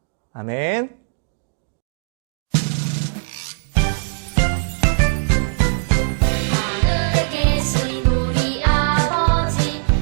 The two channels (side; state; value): left; silent; digital silence